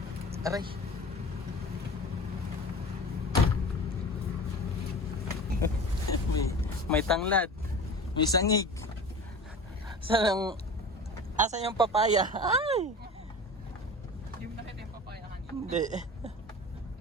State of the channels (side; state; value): both; normal; correlation 0.35